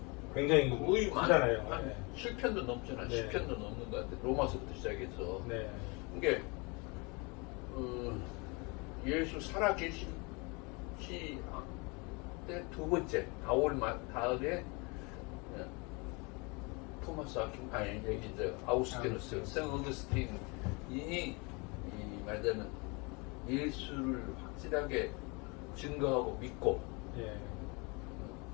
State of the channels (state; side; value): quieter; right; 29.3 dB